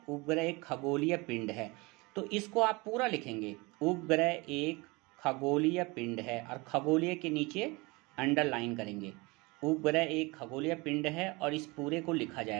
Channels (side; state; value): left; quieter; 25.1 dB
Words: उपग्रह एक खगोलीय पिंड है। तो इसको आप पूरा लिखेंगे, उपग्रह एक खगोलीय पिंड है, और खगोलीय के नीचे अंडरलाइन करेंगे। उपग्रह एक खगोलीय पिंड है और इस पूरे को लिखा